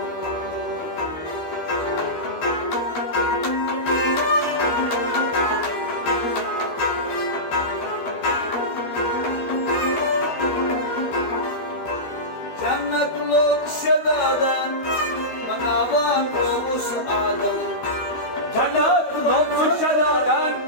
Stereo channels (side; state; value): right; late; 12 ms